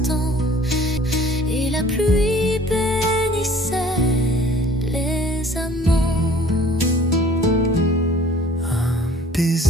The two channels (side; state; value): both; normal; correlation 0.51